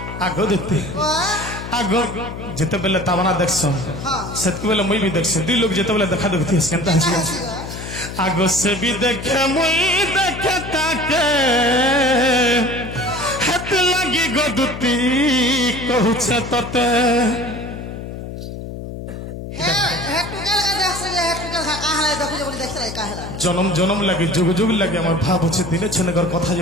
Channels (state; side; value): noise; left; hum, 9 dB below the sound